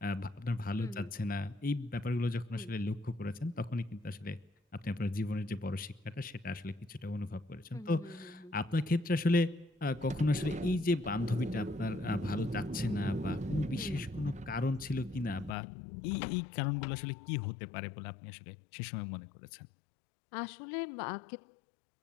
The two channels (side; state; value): right; drops out; at 15.6 s